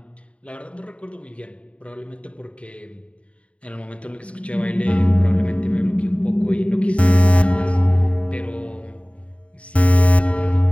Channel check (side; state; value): right; late; 0.063 ms